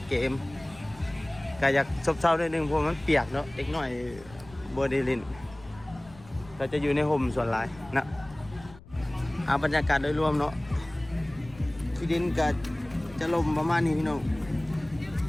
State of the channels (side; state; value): left; noise; rumble, 21 dB below the sound